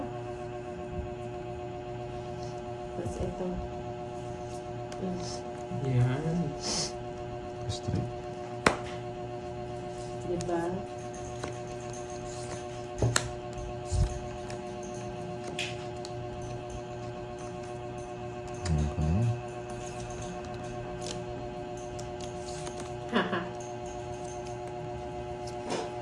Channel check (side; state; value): both; identical; correlation 1.00